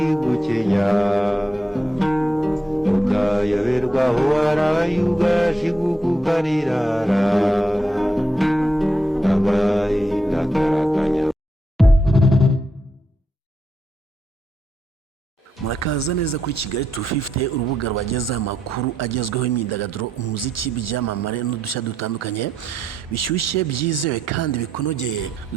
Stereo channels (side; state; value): both; normal; correlation 0.81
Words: ukayoberwa aho waraye ugashiguka ukarirara agahinda karakanya. Murakaza neza kuri Kigali 250 urubuga rwagezaho amakuru agezweho imyidagaduro umuziki byamamare n'udushya dutandukanye bishyushye byizewe kandi bikonogeye.